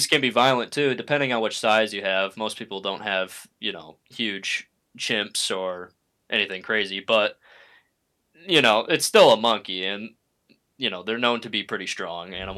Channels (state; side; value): identical; both; correlation 1.00